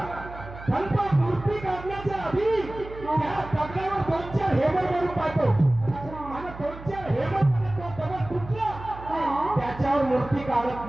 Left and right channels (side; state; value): right; noise; hum, 14 dB below the sound